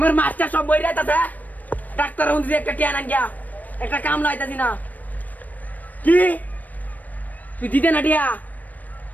মাস্টার সব বই রাইতাছে ডাক্তার হুন্দি একটা টিয়া আন গিয়া একটা কাম লাইতাছি না কি তুই দিতে না টিয়া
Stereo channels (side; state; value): right; late; 0.081 ms